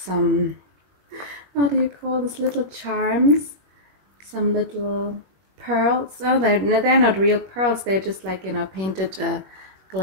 how do you call this, little charms, some little pearls. Oh, they're not real pearls, they're just like, you know, painted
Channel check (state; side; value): late; left; 21 ms